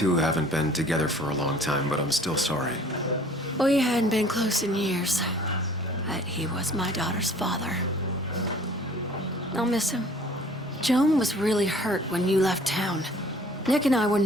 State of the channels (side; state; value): both; normal; correlation 0.52